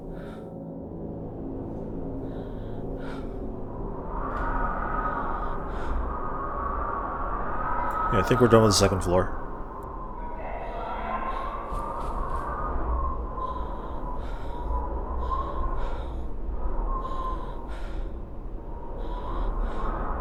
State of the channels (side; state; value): both; identical; correlation 1.00